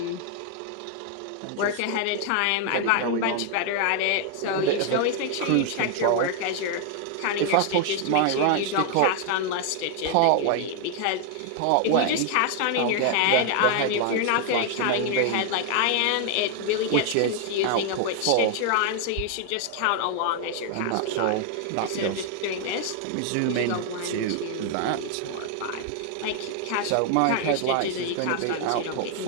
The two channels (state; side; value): different; both; correlation 0.00